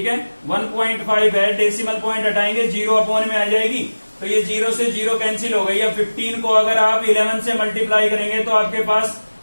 है, 1.5 है, डेसिमल पॉइंट हटाएंगे 0 अपॉन में आ जाएगी, तो ये 0 से 0 कैंसिल हो गई। अब 15 को अगर आप 11 से मल्टीप्लाई करेंगे तो आपके पास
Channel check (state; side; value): inverted; both; correlation -1.00